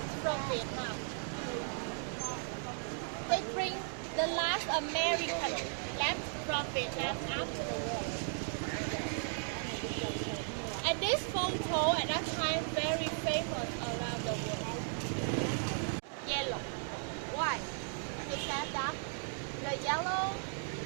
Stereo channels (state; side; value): silent; left; 54 dB below the other